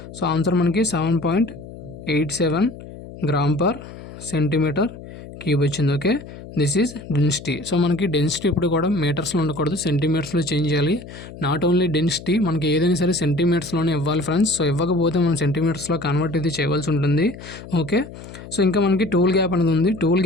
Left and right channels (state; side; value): noise; left; hum, 15 dB below the sound